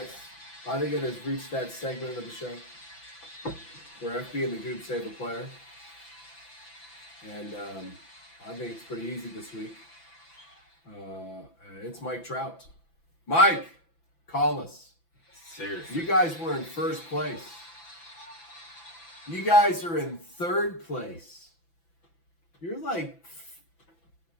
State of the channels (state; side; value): late; right; 6.0 ms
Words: think it has reached that segment of the show where FB and the Goob save a player. And I think it's pretty easy this week. It's Mike Trout. Mike, call us. Seriously. You guys were in first place. You guys are in third place. You're like,